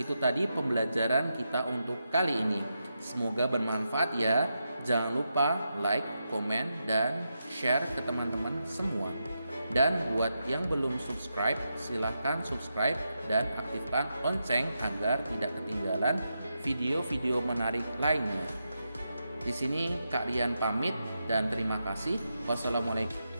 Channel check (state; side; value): inverted; both; correlation -0.86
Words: tadi pembelajaran kita untuk kali ini. Semoga bermanfaat ya. Jangan lupa like, komen, dan share ke teman-teman semua. Dan buat yang belum subscribe, silahkan subscribe dan aktifkan lonceng agar tidak ketinggalan video-video menarik lainnya. Di sini Kak Rian pamit dan terima kasih. Wassalamualaikum.